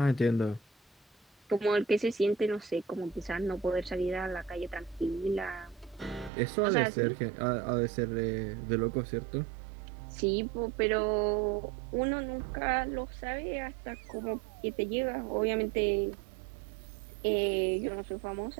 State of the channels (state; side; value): drops out; left; at 6.3 s